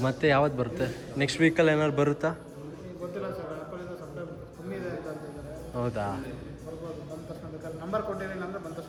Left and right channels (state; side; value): identical; both; correlation 1.00